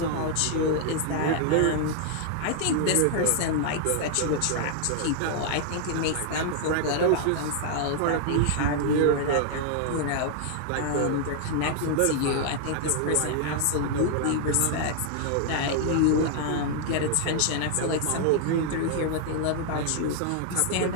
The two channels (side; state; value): both; different; correlation 0.00